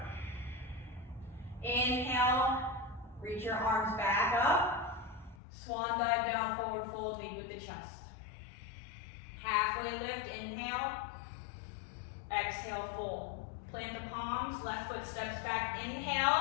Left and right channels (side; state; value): right; drops out; at 5.4 s